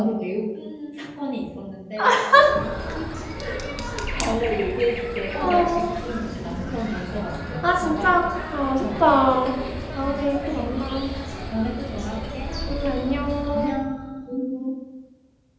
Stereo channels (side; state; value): both; identical; correlation 1.00